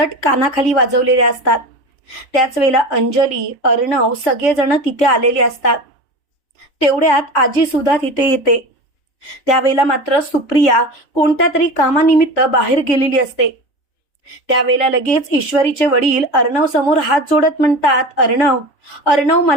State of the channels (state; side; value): late; right; 3.5 ms